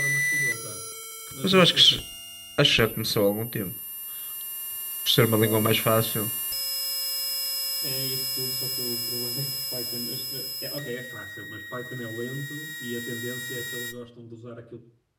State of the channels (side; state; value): both; identical; correlation 1.00